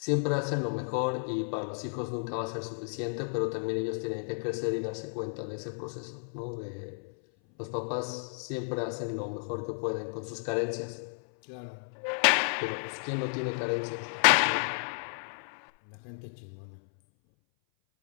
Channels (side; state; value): right; silent; 56 dB below the other